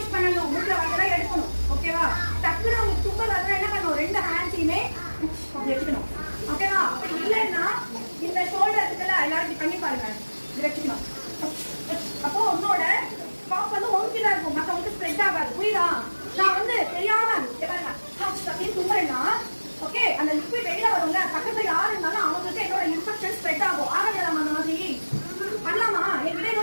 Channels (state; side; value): inverted; both; correlation -1.00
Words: பண்ணனும் மூக்குல வரதெல்லாம் எடுக்கணும் ஓகேவா டக்குனு உங்களுக்கு தும்மல் வரதா என்ன பண்ணனும் ரெண்டு ஹேண்ட்ஸையுமே அப்படி வெச்சுக்கணும் ஓகேவா அப்படி இல்லன்னா இந்த ஷோல்டர் இருக்குல எல்லாரும் பண்ணி பாருங்க இது வெச்சுக்கணும் அப்போ உன்னோட காஃப் வந்து ஒன்கிட்ட இருக்கும் மத்தவங்களுக்கு ஸ்ப்ரெட் ஆகாது புரியுதா நான் வந்து தெரியாம பாருங்க அப்படியே தும்முறேன்னா ஓகே அந்த லிக்விட் வெளியில வரும்ல பக்கத்துல யாரு இருந்தாலும் அவங்களுக்கு என்னோட இன்ஃபெக்ஷன் ஸ்ப்ரெட் ஆகும் ஆகலாம் அந்த மாதிரி பண்ணலாமா என்கிட்ட